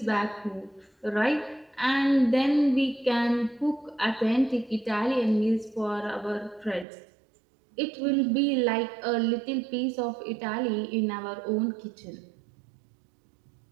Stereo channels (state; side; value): drops out; left; at 6.9 s